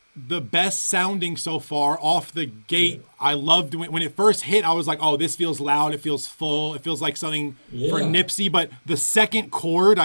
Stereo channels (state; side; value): inverted; both; correlation -1.00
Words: the best sounding so far off the gate. Yeah. I loved when it first hit. I was like, oh, this feels loud. It feels full. It feels like something for Nipsey. But the second chord